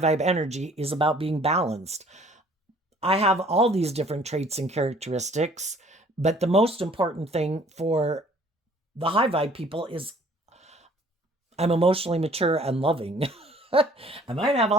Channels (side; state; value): both; normal; correlation 0.55